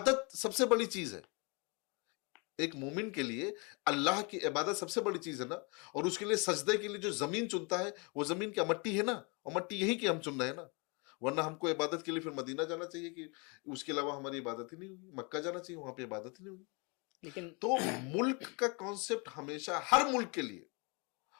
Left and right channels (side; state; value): right; quieter; 31.4 dB